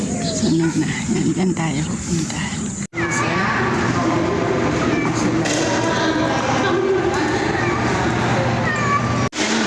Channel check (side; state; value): both; identical; correlation 1.00